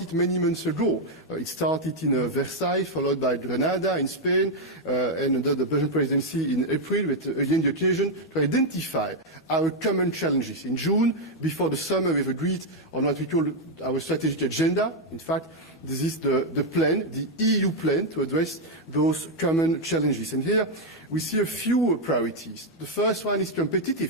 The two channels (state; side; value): normal; both; correlation 0.01